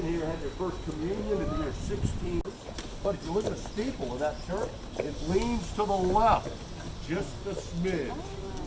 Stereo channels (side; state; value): both; identical; correlation 1.00